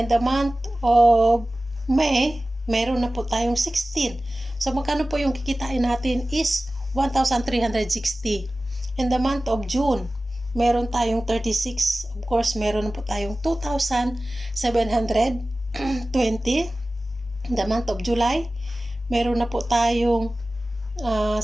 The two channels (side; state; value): both; normal; correlation 0.96